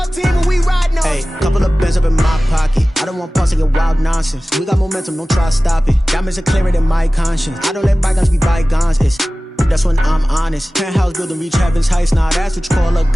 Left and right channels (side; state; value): both; normal; correlation 0.97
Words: team and we riding on him. Hey, couple of bands up in my pocket. I don't want pause to get wild nonsense. We got momentum, don't try to stop it. Diamonds are clearer than my conscience. I don't let bygones be bygones. It's that's when I'm honest. Penthouse building, reach heaven's heights. Nah, that's what you call a